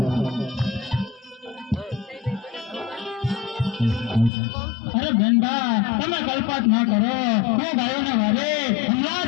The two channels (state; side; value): drops out; right; at 4.3 s